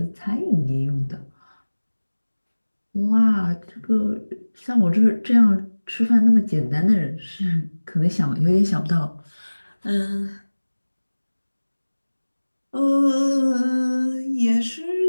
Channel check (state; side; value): inverted; both; correlation -1.00